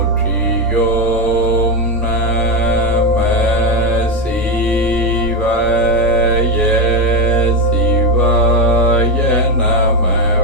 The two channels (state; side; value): normal; both; correlation 0.11